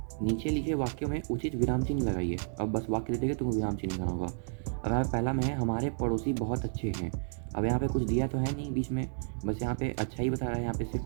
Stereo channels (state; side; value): silent; left; 57 dB below the other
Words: नीचे लिखे वाक्यों में उचित विराम चिन्ह लगाइए। अब बस वाक्य दे देगा, तुमको विराम चिन्ह लगाना होगा। अब यहाँ पहला में है हमारे पड़ोसी बहुत अच्छे हैं। अब यहाँ पे कुछ दिया तो है नहीं बीच में, बस यहाँ पे अच्छा ही बता रहा है, यहाँ पे सिर्फ